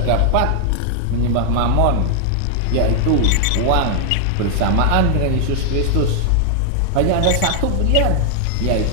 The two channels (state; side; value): different; both; correlation 0.00